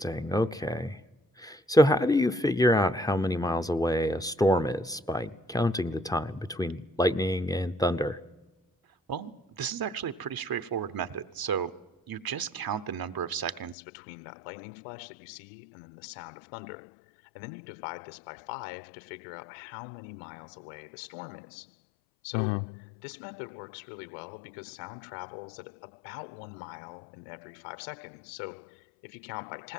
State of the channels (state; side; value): drops out; right; at 13.8 s